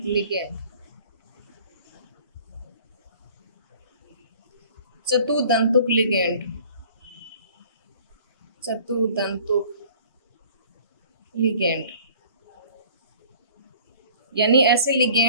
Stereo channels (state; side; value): inverted; both; correlation -0.50